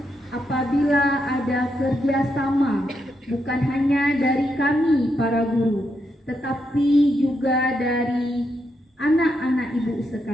apabila ada kerjasama bukan hanya dari kami para guru, tetapi juga dari anak-anak Ibu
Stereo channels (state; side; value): normal; both; correlation 0.81